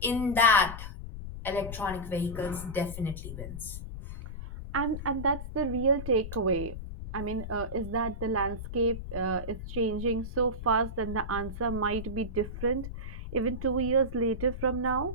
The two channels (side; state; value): left; noise; rumble, 8 dB below the sound